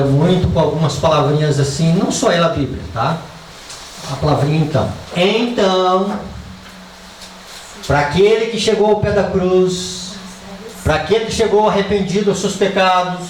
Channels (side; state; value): both; identical; correlation 1.00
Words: muito com algumas palavrinhas assim, não só ela, a Bíblia, tá? A palavrinha então. Então, para aquele que chegou ao pé da cruz, para aquele que chegou arrependido dos seus